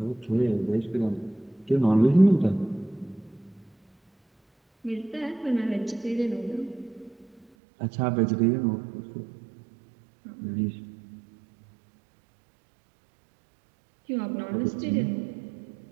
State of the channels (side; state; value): left; drops out; at 7.5 s